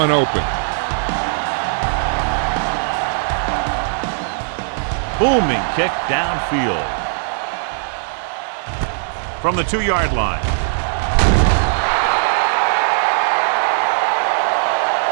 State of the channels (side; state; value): left; silent; digital silence